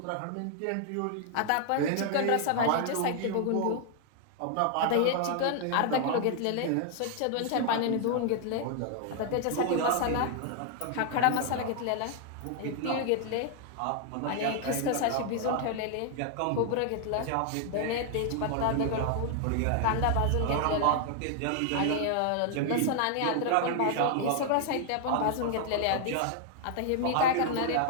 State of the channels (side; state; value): both; different; correlation 0.00